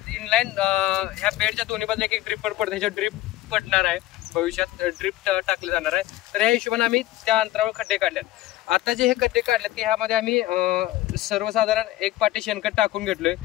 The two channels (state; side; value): quieter; right; 15.7 dB